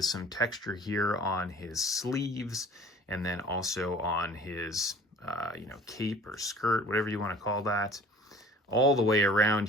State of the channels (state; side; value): normal; both; correlation 0.47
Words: some texture here on his sleeves, and then also on his you know, cape or skirt, whatever you want to call that. All the way around